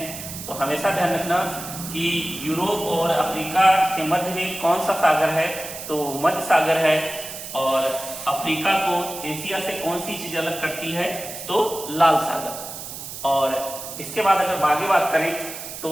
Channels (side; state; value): right; noise; hiss, 10 dB below the sound